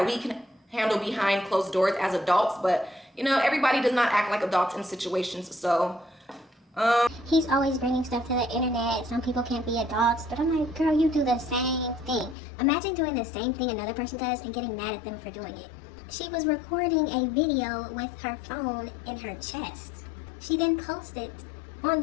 we can handle behind closed doors as adults, but you know, everybody does not act like adults in situations. So he's always bringing stuff to the internet. Some people can't be adults, but I'm like, girl, you do the same thing. Imagine doing the same thing another person does and getting mad at them for doing it. She was recording a video with her phone in her chest. She then posted on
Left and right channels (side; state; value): right; drops out; at 12.4 s